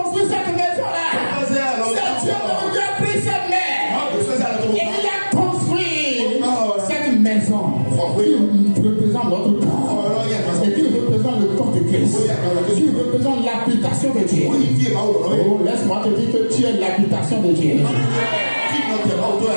cette maison-là. C'est Dieu qui a pris cette main. Et il a construit cette maison qui représente notre corps. Et qui représente le corps de Christ. Qui représente l'habitation de Dieu. Oh, laisse-moi te dire que tu es l'habitation de Dieu.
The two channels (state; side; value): inverted; both; correlation -1.00